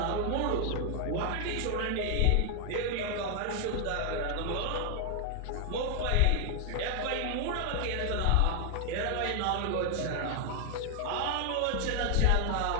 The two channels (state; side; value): different; both; correlation 0.00